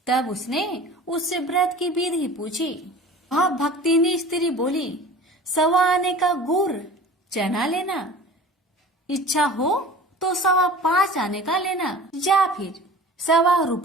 तब उसने उससे व्रत की विधि पूछी। वह भक्तिनी स्त्री बोली, 1.25 आने का गुड़ चना लेना, इच्छा हो तो 5.25 आने का लेना या फिर 1.25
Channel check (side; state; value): both; normal; correlation 0.41